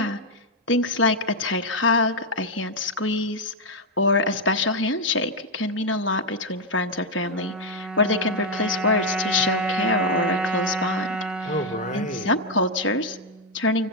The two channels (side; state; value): both; normal; correlation 0.02